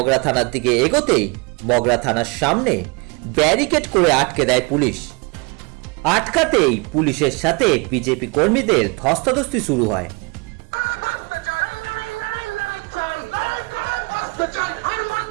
থানার দিকে এগোতেই মগরা থানার সামনে ব্যারিকেড করে আটকে দেয় পুলিশ। আটকাতেই পুলিশের সাথে বিজেপি কর্মীদের ধস্তাধস্তি শুরু হয়।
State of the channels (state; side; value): quieter; left; 29.4 dB